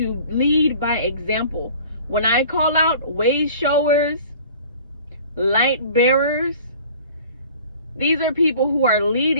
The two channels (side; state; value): both; inverted; correlation -0.47